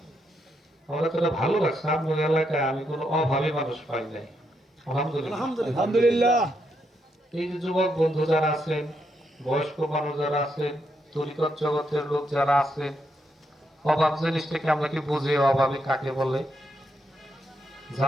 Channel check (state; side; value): normal; both; correlation 0.79